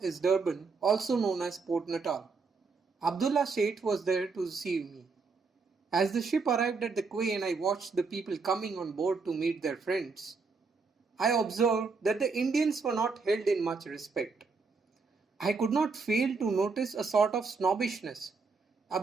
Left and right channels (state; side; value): quieter; left; 4.6 dB